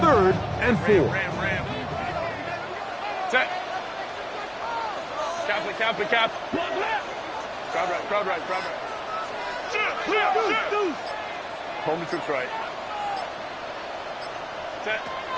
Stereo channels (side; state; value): both; identical; correlation 1.00